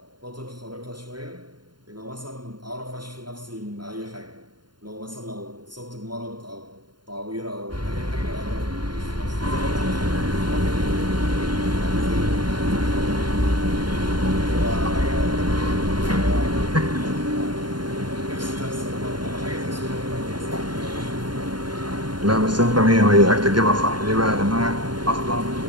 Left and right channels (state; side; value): late; left; 0.71 ms